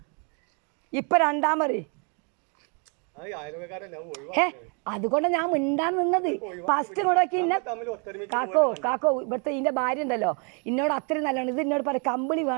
ഇപ്പം രണ്ടാമത് അതുകൊണ്ട് ഞാൻ മിണ്ടാൻ നിന്നത് ഫസ്റ്റ് ഇങ്ങോട്ടൊക്കെ ഇന്നെ കാക്കോ ഇവിടുത്തെ ഇതിൻ്റെ ഭാര്യ ഉണ്ടല്ലോ എന്നോട് അത്രയും നല്ലതാണ് ഇത് എന്നോട് പറയും കമ്പിളി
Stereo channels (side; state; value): left; quieter; 37.0 dB